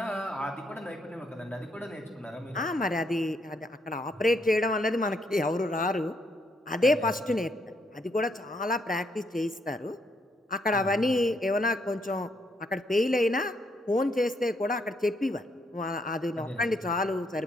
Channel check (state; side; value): normal; both; correlation 0.74